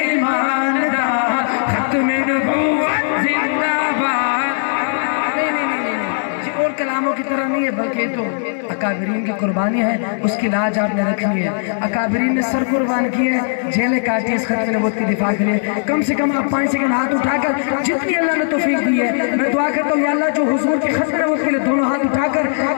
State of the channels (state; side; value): silent; right; 67 dB below the other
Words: دا, ختم نبوت زندہ باد. اور کلاموں کی طرح نہیں ہے بلکہ تو اکابرین کی قربانی ہے, اس کی لاج آپ نے رکھنی ہے. اکابرین نے سر قربان کیے ہیں, جیلیں کاٹی اس ختم نبوت کی دفاع کے لیے. کم سے کم آپ 5 سیکنڈ ہاتھ اٹھا کر جتنی اللہ نے توفیق دی ہے میں دعا کرتا ہوں یا اللہ جو حضور کی ختم نبوت کے لیے دونوں ہاتھ اٹھا کر